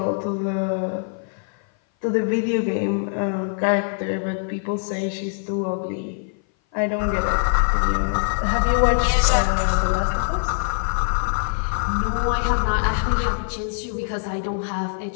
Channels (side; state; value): right; silent; 58 dB below the other